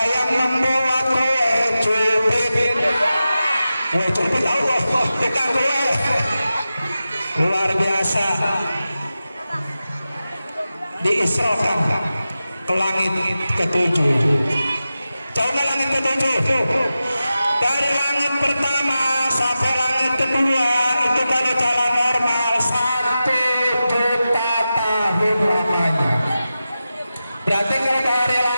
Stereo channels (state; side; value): inverted; both; correlation -0.93